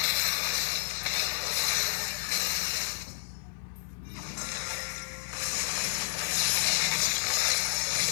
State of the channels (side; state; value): right; silent; digital silence